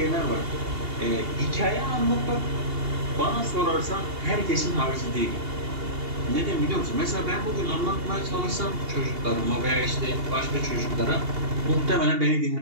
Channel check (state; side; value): late; left; 2.8 ms